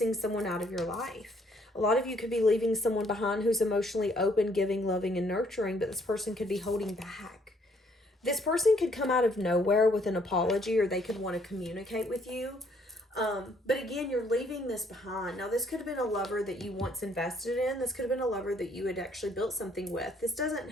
someone out of your life. A lot of you could be leaving someone behind who's emotionally open, giving, loving, and nurturing, but this person could be holding back. This person could come out of nowhere with an apology, or they could want to communicate with you. But again, you're leaving this behind. Now, this could have been a lover that you once invested in. This could have been a lover that you had actually built something with. This doesn't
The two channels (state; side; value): normal; both; correlation 0.66